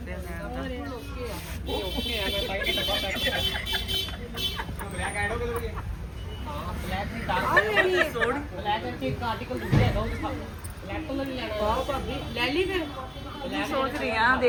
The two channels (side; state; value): both; identical; correlation 1.00